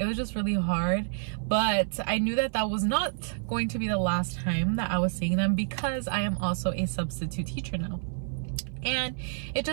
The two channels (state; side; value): silent; left; 57 dB below the other